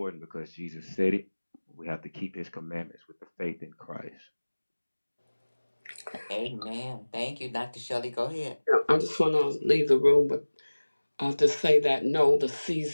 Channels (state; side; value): inverted; both; correlation -1.00